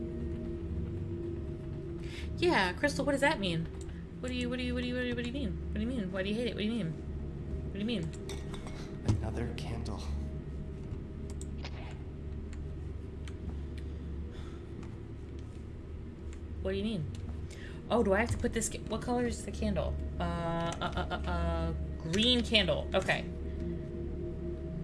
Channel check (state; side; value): identical; both; correlation 1.00